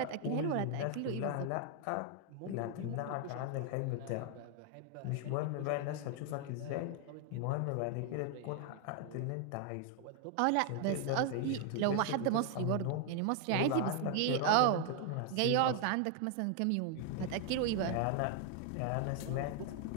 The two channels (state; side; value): different; both; correlation 0.00